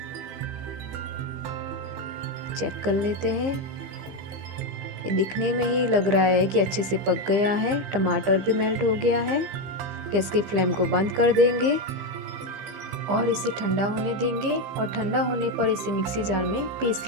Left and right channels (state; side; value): late; left; 15 ms